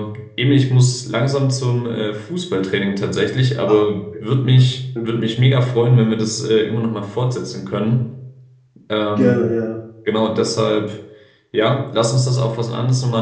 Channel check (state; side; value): identical; both; correlation 1.00